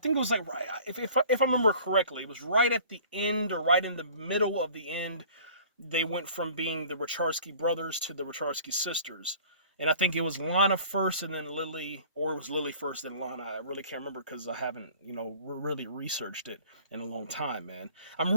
it was like right if I remember correctly, it was right at the end or right in the middle of the end. They went from being the Wachowski brothers to the Wachowski sisters, and I think it was Lana first and then Lily, or it was Lily first and Lana. I really can't remember because I haven't really researched it in a long time, man. I'm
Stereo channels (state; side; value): inverted; both; correlation -0.48